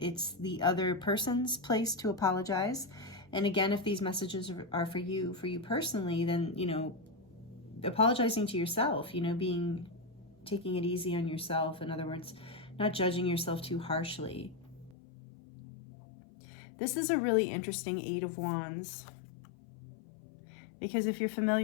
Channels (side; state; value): right; drops out; at 15.0 s